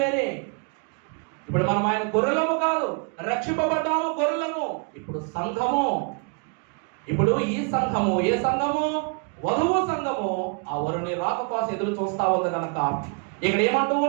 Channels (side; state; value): left; quieter; 36.7 dB